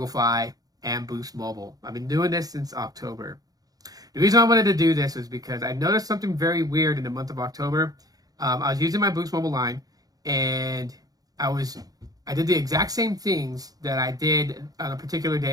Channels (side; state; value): left; late; 0.18 ms